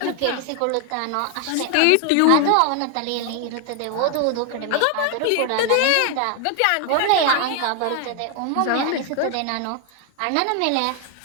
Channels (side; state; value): both; different; correlation 0.00